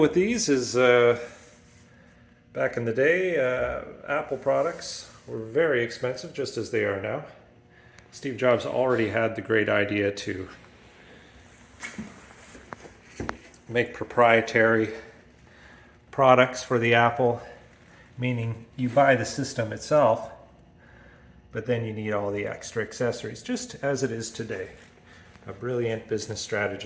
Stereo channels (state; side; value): identical; both; correlation 1.00